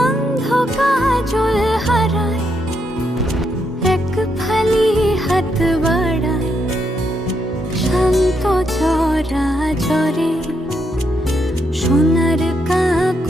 অন্ধ কাজল হারায় এক ফালি হাত বাড়ায় শান্ত চরা চরে সোনার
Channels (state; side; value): normal; both; correlation 0.79